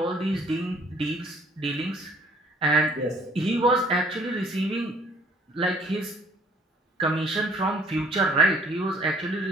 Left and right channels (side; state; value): both; normal; correlation 0.58